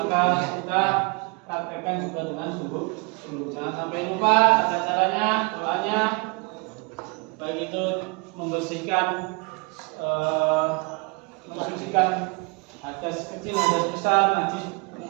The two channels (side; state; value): left; quieter; 29.1 dB